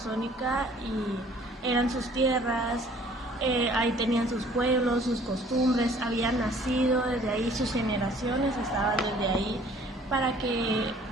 y eran sus tierras, ahí tenían sus pueblos, sus costumbres, habían nacido desde ahí, sus generaciones estaban desde ahí, para que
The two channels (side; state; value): both; normal; correlation 0.55